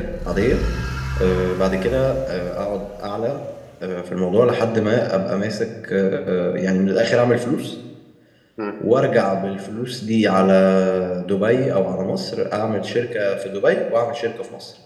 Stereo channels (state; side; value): identical; both; correlation 1.00